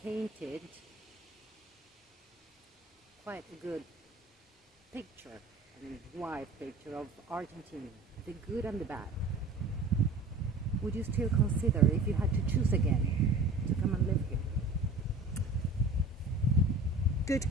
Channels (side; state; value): left; quieter; 3.0 dB